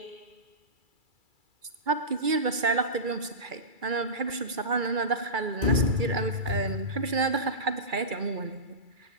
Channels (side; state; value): left; late; 2.3 ms